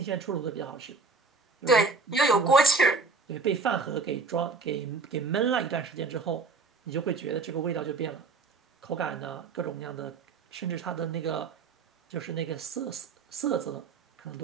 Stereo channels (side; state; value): left; quieter; 4.2 dB